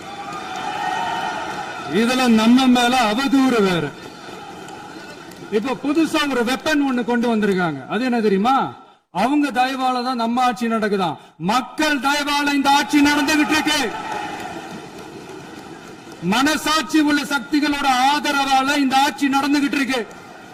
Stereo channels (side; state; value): both; identical; correlation 1.00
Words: இதுல நம்ம மேல அவதூறு வேற. இப்ப புதுசா ஒரு வெப்பன் ஒண்ணு கொண்டு வந்திருக்காங்க. அது என்ன தெரியுமா? அவங்க தயவால தான் நம்ம ஆட்சி நடக்குதான். மக்கள் தயவால இந்த ஆட்சி நடந்துகிட்டு இருக்கு. மனசாட்சி உள்ள சக்திகளோட ஆதரவால இந்த ஆட்சி நடந்துகிட்டு இருக்கு.